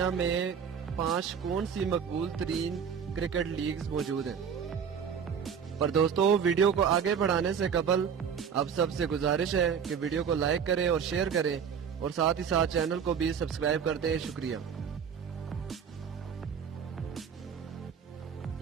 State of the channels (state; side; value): quieter; left; 7.2 dB